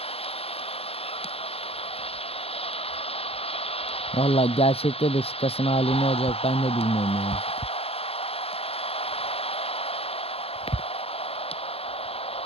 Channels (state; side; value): late; right; 0.28 ms